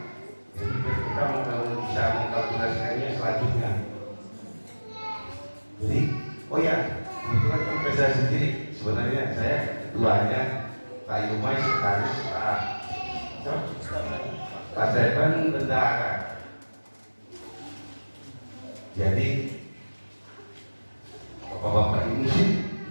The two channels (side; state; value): both; inverted; correlation -1.00